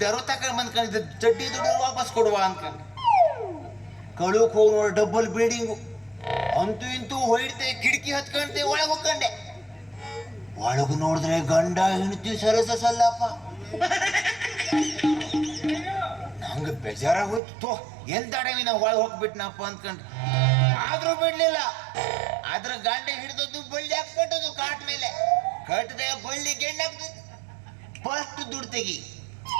ತಕೊಂಡ್ ಬಂದ್ಕೊಂಡಿದ್ದೆ, ಚಡ್ಡಿ ದುಡ್ಡು ವಾಪಸ್ ಕೊಡುವ ಅನ್ಕೊಂಡು ಕಳುಕ್ ಹೋಗಿ ನೋಡಿ, ಡಬಲ್ ಬಿಲ್ಡಿಂಗು. ಅಂತೂ ಇಂತೂ ಹೊಯ್ತೆ, ಕಿಟಕಿ ಹತ್ಕೊಂಡೆ, ಒಳಗೆ ಹೋಗ್ಕೊಂಡೆ. ಒಳಗು ನೋಡಿದ್ರೆ ಗಂಡ ಹೆಂಡತಿ ಸಲ್ಲಪ್ಪ. ನಂಗೆ ಬೇಜಾರಾಗೋಯ್ತು. ಎಂತ ಅಡವಿ ನಾವು ಒಳಗೆ ಹೋಗ್ಬಿಟ್ನಪ್ಪ ಅಂದ್ಕೊಂಡ್ರೆ, ಆದ್ರೂ ಬಿಡ್ಲಿಲ್ಲ. ಅದ್ರ ಗಂಡ ಹಿಡಿದದ್ದು ಬಳ್ಳಿ ಹಾಕ್ಬಿಟ್ಟದು ಕಾಟ್ ಮೇಲೆ. ಕಟ್ಟದೆ ಬಳ್ಳಿ ಗೆಂಡ ಹಾಕ್ತದೆ. ಫಸ್ಟ್ ದುಡ್ಡು ತೆಗಿ,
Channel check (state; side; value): drops out; left; at 17.4 s